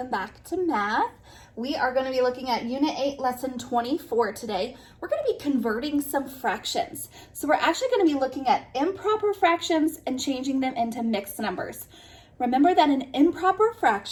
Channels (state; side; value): identical; both; correlation 1.00